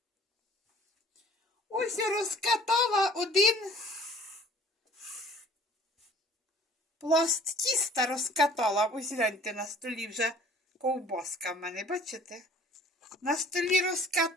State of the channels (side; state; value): both; normal; correlation 0.51